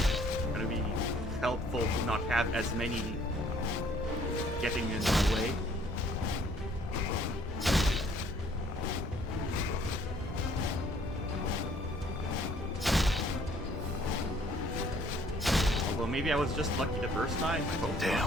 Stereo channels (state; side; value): normal; both; correlation 0.60